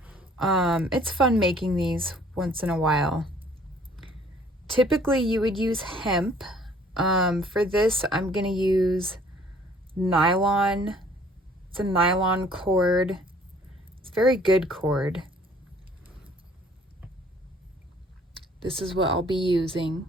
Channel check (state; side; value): normal; both; correlation 0.57